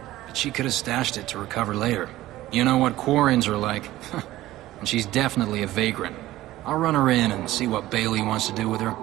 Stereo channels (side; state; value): left; quieter; 15.8 dB